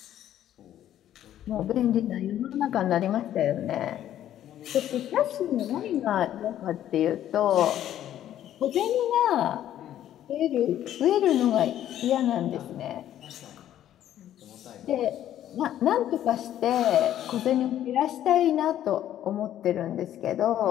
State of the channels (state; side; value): quieter; right; 11.7 dB